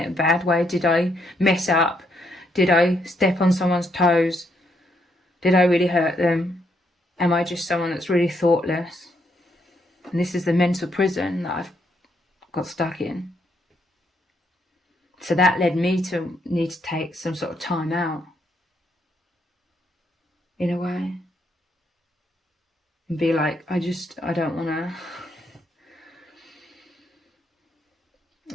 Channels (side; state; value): both; normal; correlation 0.75